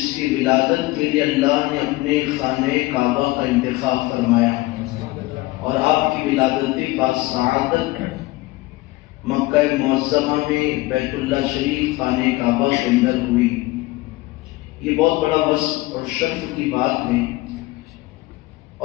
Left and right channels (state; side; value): quieter; right; 20.1 dB